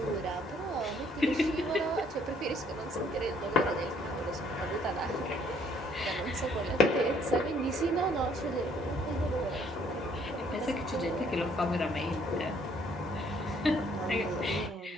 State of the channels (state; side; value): normal; both; correlation 0.63